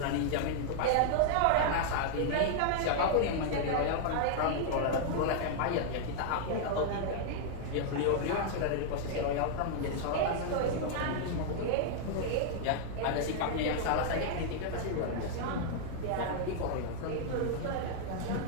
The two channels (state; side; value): different; both; correlation -0.01